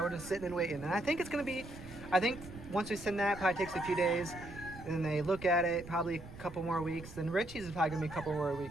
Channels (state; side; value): noise; right; rumble, 15 dB below the sound